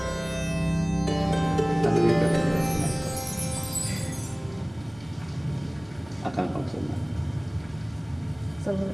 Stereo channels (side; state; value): right; noise; rumble, 23 dB below the sound